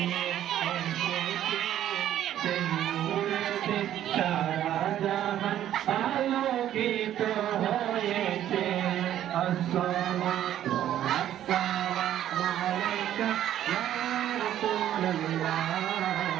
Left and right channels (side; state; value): left; quieter; 11.6 dB